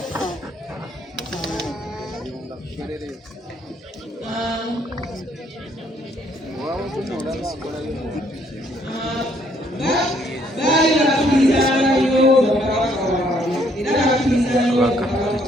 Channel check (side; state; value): both; normal; correlation 0.67